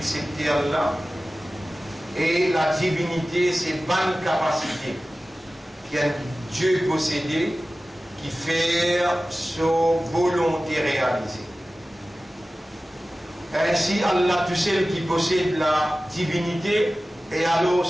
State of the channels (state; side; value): normal; both; correlation 0.96